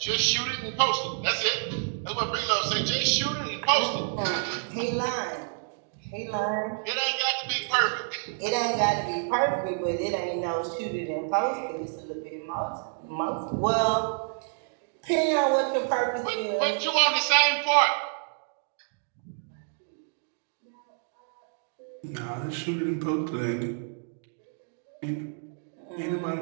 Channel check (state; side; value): silent; left; digital silence